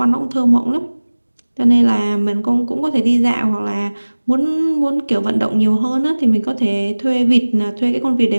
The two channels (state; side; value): inverted; both; correlation -1.00